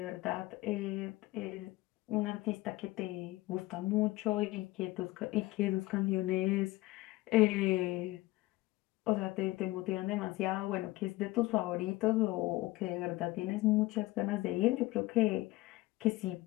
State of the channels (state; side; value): quieter; right; 19.6 dB